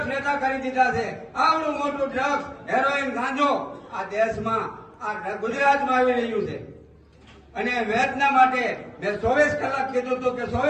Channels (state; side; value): identical; both; correlation 1.00